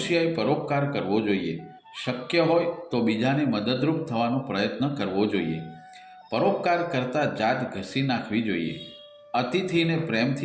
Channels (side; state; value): both; identical; correlation 1.00